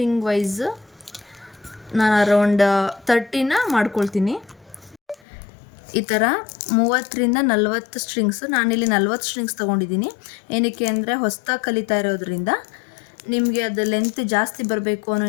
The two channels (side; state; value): right; drops out; at 5.2 s